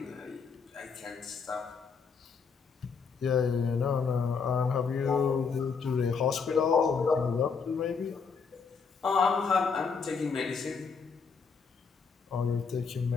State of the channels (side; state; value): right; quieter; 5.5 dB